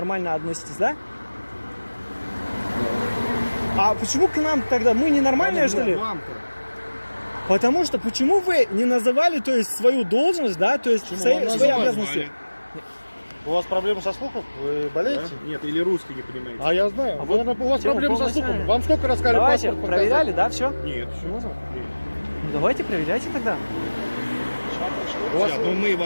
относитесь, да? А почему к нам тогда? Мы ненормальные, что ли? Потому что почему вы не называли, то есть, свою должность, да, то есть, свои обязанности? У вас проблемы со слухом? Вы болеете? Да? Нет, или русский не понимаете. А я знаю. Вот, у вас проблемы со слухом. Вам сколько раз сказали Давайте, паспорт проверяли, да, все? Нет, все. Ну, давайте проверяйте тогда. Сейчас, ну мы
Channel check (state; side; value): inverted; both; correlation -1.00